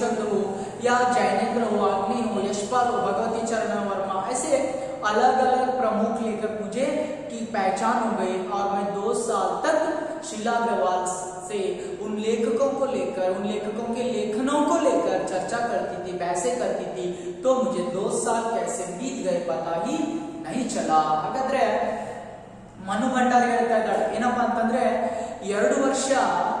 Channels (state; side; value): identical; both; correlation 1.00